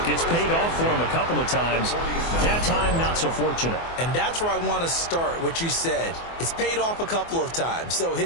it's paid off for him a couple of times. That time, not so fortunate. And that's where I want to start, what you said. It's paid off a couple of times. So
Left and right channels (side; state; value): right; late; 24 ms